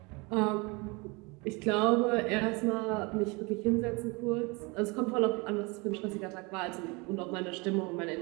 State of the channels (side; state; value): left; quieter; 27.5 dB